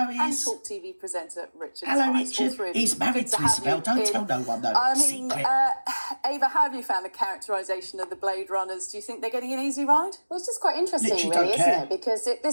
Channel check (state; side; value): inverted; both; correlation -1.00